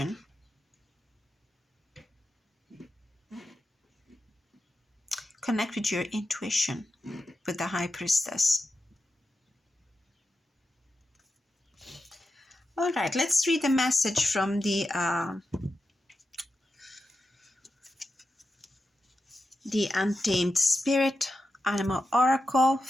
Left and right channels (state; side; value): normal; both; correlation 0.89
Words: Connect with your intuition with the High Priestess. All right, let's read the message from the Untamed Spirit Animal Oracle